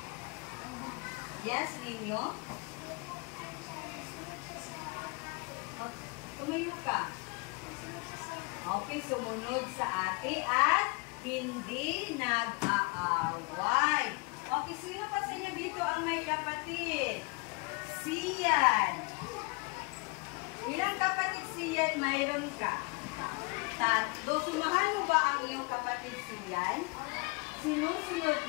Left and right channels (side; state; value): right; quieter; 29.5 dB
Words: Yes, ninyo? Okay, tumayo ka. Okay, sumunod sa ate at hindi nag-aaway. Okay, sino pa sa inyo dito ang may kapatid? Sian. Ilang kapatid Sian mayroon ka? 3. Sumahan mo ba ang iyong kapatid Sian? Sinusunod